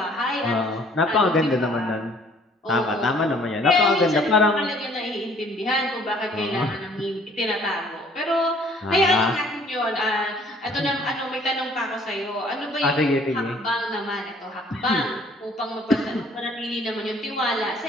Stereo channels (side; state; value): both; normal; correlation 0.57